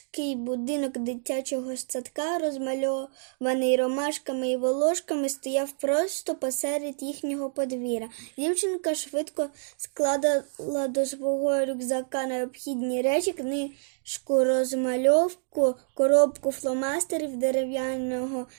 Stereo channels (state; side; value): silent; left; digital silence